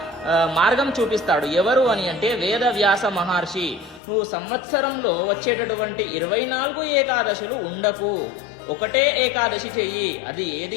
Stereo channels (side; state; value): right; drops out; at 4.0 s